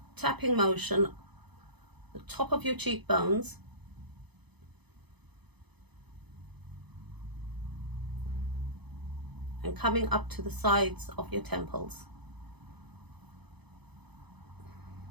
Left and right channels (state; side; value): late; left; 0.99 ms